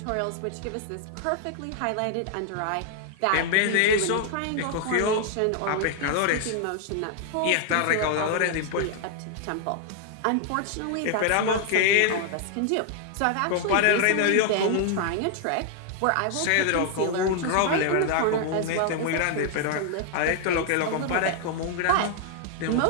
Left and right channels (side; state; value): both; different; correlation 0.00